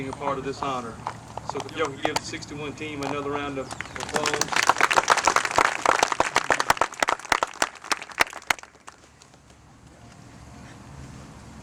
a part of this honor. So if y'all could give the 61 team another round of applause.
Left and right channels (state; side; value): identical; both; correlation 1.00